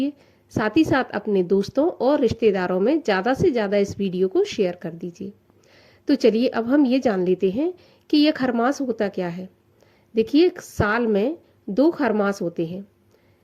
साथ ही साथ अपने दोस्तों और रिश्तेदारों में ज़्यादा से ज़्यादा इस वीडियो को शेयर कर दीजिए। तो चलिए अब हम ये जान लेते हैं कि यह खरमास होता क्या है। देखिए, साल में 2 खरमास होते हैं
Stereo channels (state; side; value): identical; both; correlation 1.00